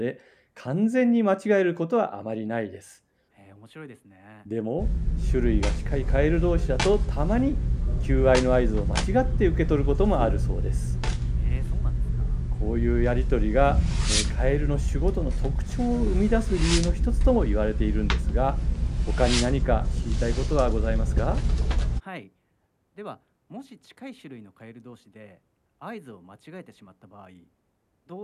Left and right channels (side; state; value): both; identical; correlation 1.00